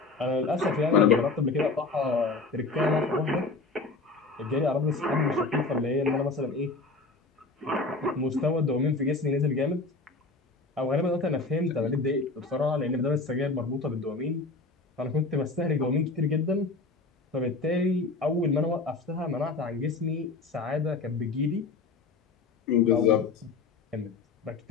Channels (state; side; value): quieter; right; 3.8 dB